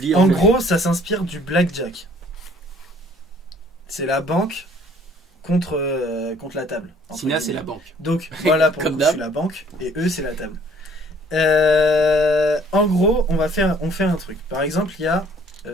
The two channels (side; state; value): both; normal; correlation 0.58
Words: En fait. gros, ça s'inspire du blackjack. C'est la banque contre la table. entre Sina, c'est guillemets. la banque. Donc voilà, pour le Comme coup, d'hab. c'est la banque et eux c'est la table. En gros, on fait un truc. Par exemple, il